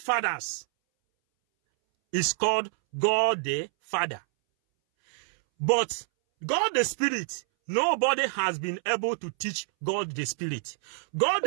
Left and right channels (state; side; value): silent; left; 60 dB below the other